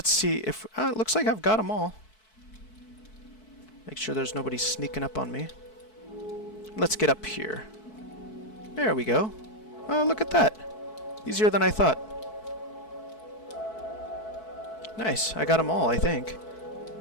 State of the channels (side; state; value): right; late; 4.6 ms